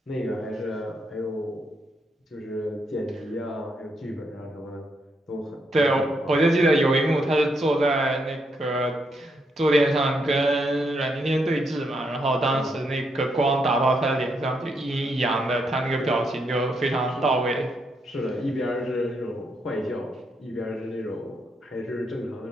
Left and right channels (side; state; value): both; normal; correlation 0.78